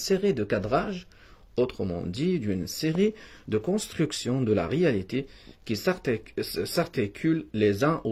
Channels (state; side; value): identical; both; correlation 1.00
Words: de cadrages, autrement dit d'une série de constructions de la réalité qui s'articulent les uns